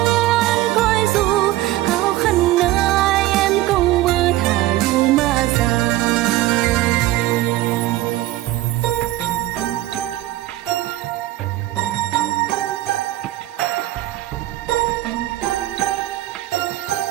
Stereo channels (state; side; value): quieter; left; 16.0 dB